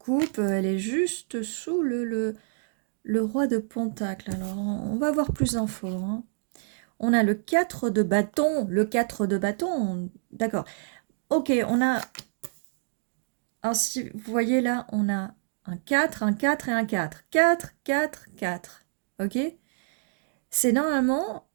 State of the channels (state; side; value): silent; left; digital silence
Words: Elle est juste sous le roi de Pentacle. Alors, on va voir plus d'infos, hein. On a le 4 de bâton. Le 4 de bâton, d'accord. Ok, on a... Alors, si vous voyez là, on a un 4 et un 4. 4, 4, 4. Ok? C'est normalement